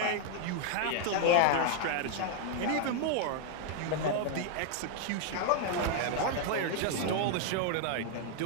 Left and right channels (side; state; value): both; different; correlation 0.00